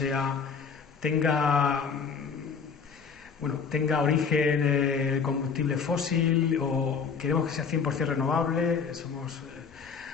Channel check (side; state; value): right; quieter; 5.9 dB